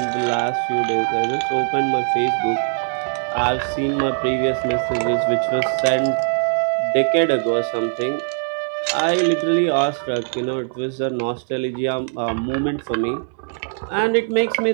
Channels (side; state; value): left; silent; digital silence